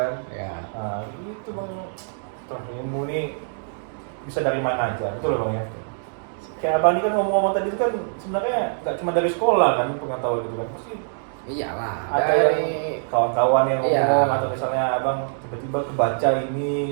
Ya. Itu bang, ilmu ini bisa dari mana aja, betul loh bang ya. Kayak abang ini kan ngomong-ngomong tadi itu kan sebenarnya nggak cuma dari sekolah kan pengetahuan itu kan, pasti Iyalah. ada Dari yang kawan-kawan yang Iya. ngomong atau misalnya abang tiba-tiba kebaca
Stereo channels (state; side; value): silent; left; 63 dB below the other